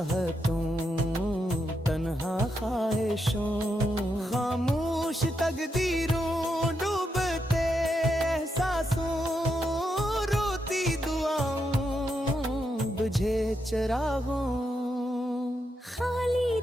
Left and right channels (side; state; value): both; normal; correlation 0.83